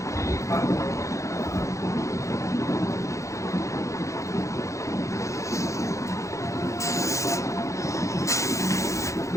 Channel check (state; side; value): late; right; 0.15 ms